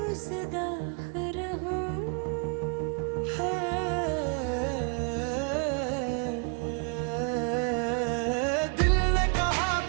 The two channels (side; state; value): left; quieter; 37.2 dB